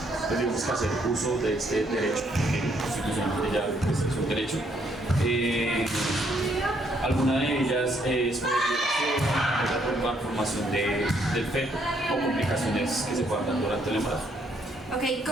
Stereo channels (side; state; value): both; normal; correlation 0.70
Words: tenemos que hacer uso de este derecho, que constitucionalmente ya pues, es un derecho. Alguna de ellas es por violación, otra por malformación del feto o complicaciones que se puedan dar durante el embarazo. Ok,